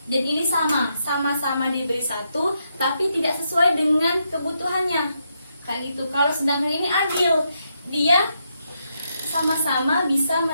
dan ini sama-sama diberi satu, tapi tidak sesuai dengan kebutuhannya. Kayak gitu. Kalau sedangkan ini adil, dia sama-sama bisa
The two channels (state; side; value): inverted; both; correlation -0.81